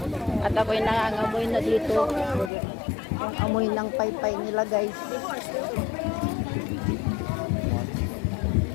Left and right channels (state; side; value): drops out; right; at 2.5 s